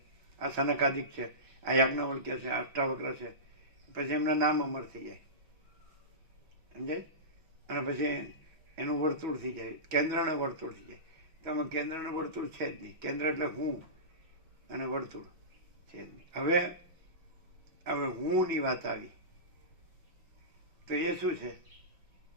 આ સનકાદિક છે, આ યાજ્ઞવલ્ક્ય છે, અષ્ટાવક્ર છે. પછી એમના નામ અમર થઈ જાય, સમજાય? અને પછી એનું વર્તુળ થઈ જાય, કેન્દ્રને વર્તુળ થઈ જાય. તો આમાં કેન્દ્રને વર્તુળ છે જ નહીં. કેન્દ્ર એટલે હું અને વર્તુળ છે જ નહીં. હવે હુંની વાત આવી તો એ શું છે?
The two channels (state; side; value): late; left; 6.1 ms